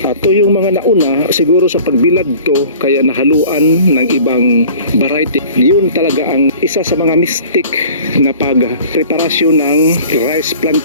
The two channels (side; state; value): both; inverted; correlation -0.46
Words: At to yung mga nauna siguro sa pagbilad to kaya nahaluan ng ibang variety. Yun talaga ang isa sa mga mistake na pag-preparasyon ng rice